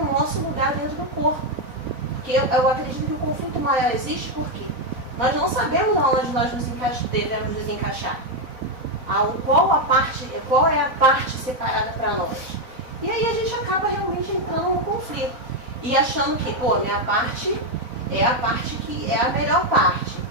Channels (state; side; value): late; left; 4.0 ms